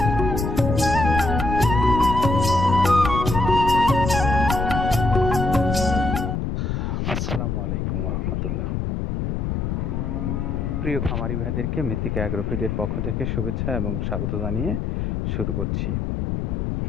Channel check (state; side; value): noise; left; rumble, 1 dB below the sound